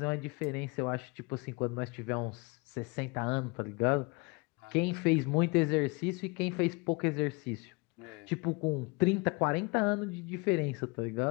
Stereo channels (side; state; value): right; quieter; 28.4 dB